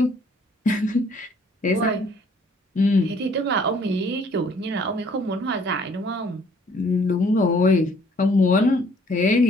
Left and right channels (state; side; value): normal; both; correlation 0.60